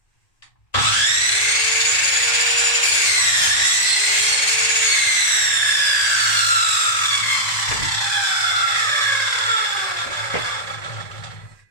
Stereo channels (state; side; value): late; right; 1.8 ms